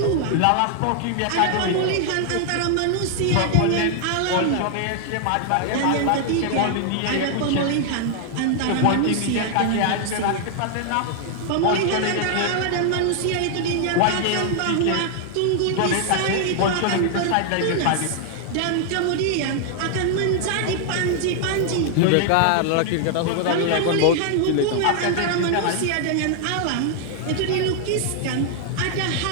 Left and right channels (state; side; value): different; both; correlation 0.00